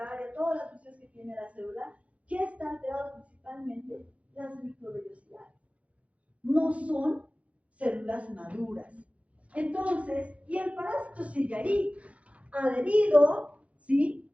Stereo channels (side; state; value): left; late; 0.064 ms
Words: todas las funciones que tiene la célula? ¿Qué está alterado principalmente? Las microvellosidades. No son células maduras. Entonces, y el parásito sigue ahí, adherido, ¿sí?